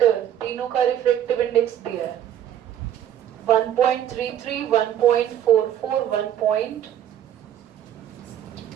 तीनों का रिफ्रैक्टिव इंडेक्स दिया है 1.33, 1.44, 1.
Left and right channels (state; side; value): quieter; left; 10.7 dB